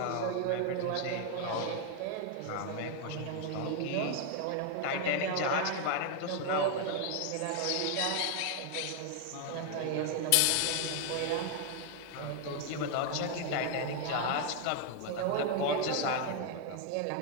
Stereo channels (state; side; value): different; both; correlation 0.00